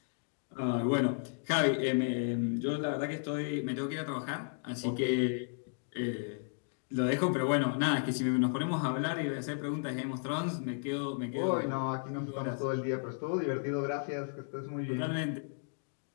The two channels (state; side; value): silent; right; digital silence